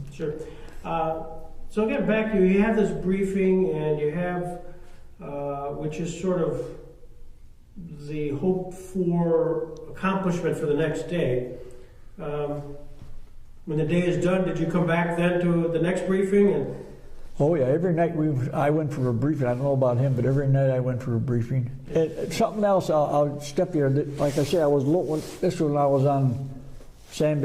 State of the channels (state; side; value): identical; both; correlation 1.00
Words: Sure. So again, back to you have this briefing, and you have, which is sort of the hope for accomplishment for the next day. When the day is done, did you come back then to the next briefing? And oh yeah, every night I went for a briefing. I don't know about him, but every night I went for a briefing. And something else, I'll step here. Like I said, this was when I was on